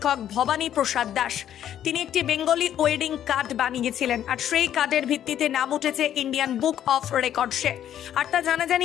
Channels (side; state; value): right; quieter; 10.7 dB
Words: ভবানী প্রসাদ দাস তিনি একটি বেঙ্গলি ওয়েডিং কার্ড বানিয়েছিলেন, আর সেই কার্ডের ভিত্তিতে নাম উঠেছে ইন্ডিয়ান বুক অফ রেকর্ডসে। আর তা